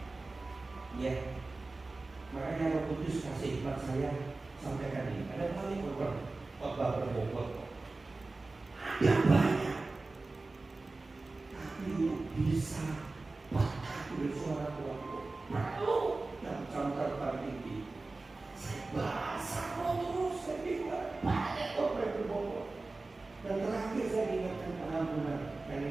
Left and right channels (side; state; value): left; quieter; 3.4 dB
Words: Ya. Makanya Roh Kudus kasih hikmat saya sampaikan ini. Ada kali program khotbah berbobot. Ada banyak. Tapi bisa bahkan bersuara kuat. Perlu dan camkan tinggi. Saya bahasa terus saya bingung. Banyak khotbah berbobot. Dan terakhir saya ingatkan pengampunan. Dan